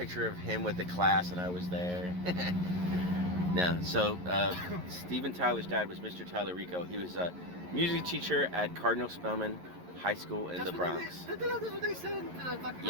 of him with the class and I was there. No, so Steven Tyler's dad was Mr. Tallarico. He was a music teacher at Cardinal Spellman High School in the Bronx. That's what they said in the documentary.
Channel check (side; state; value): left; late; 11 ms